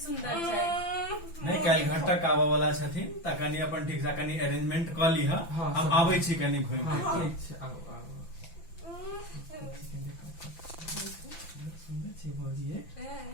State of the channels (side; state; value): right; late; 5.9 ms